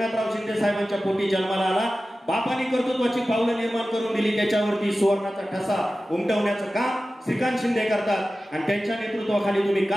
शिंदे साहेबांच्या पोटी जन्माला आला. बापाने कर्तृत्वाची पावलं निर्माण करून दिली, त्याच्यावरती सुवर्णाचा ठसा उमटवण्याचं काम श्रीकांत शिंदे करतात आणि त्यांच्या नेतृत्वाखाली तुम्ही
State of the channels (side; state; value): both; normal; correlation 0.95